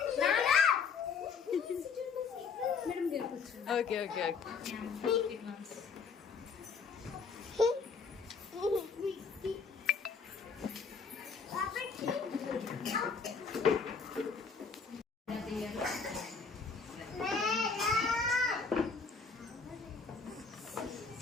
Okay okay okay.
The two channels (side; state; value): right; quieter; 5.4 dB